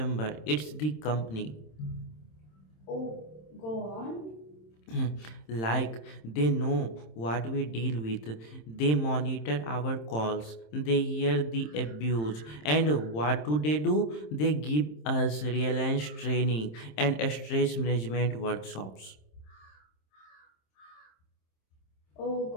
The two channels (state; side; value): late; right; 26 ms